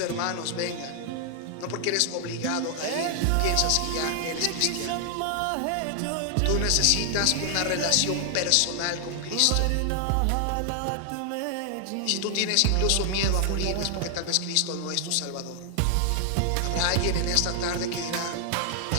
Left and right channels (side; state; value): both; different; correlation 0.00